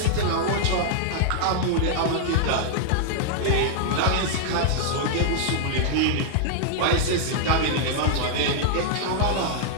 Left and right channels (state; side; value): different; both; correlation -0.01